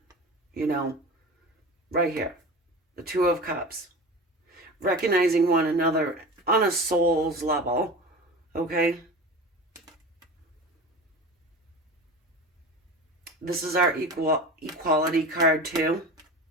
you know, right here, the Two of Cups, recognizing one another on a soul's level, okay? This is our equality card too.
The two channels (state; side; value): normal; both; correlation 0.33